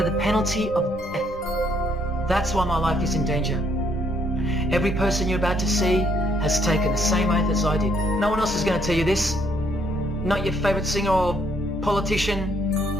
penalty of death. That's why my life is in danger. Every person you're about to see has taken the same oath as I did. No one else is going to tell you this. Not your favorite singer or politician,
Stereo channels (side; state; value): both; normal; correlation 0.69